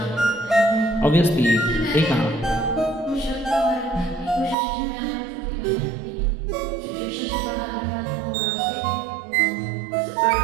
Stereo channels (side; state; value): left; drops out; at 4.5 s